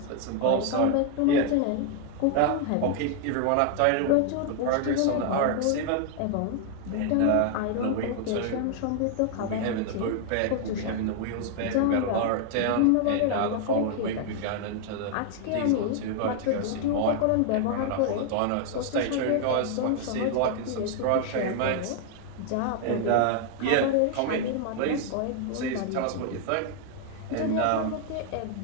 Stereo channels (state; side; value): different; both; correlation 0.00